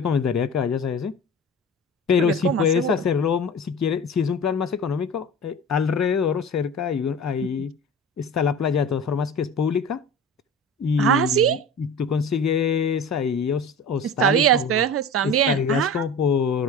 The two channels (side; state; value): both; normal; correlation 0.35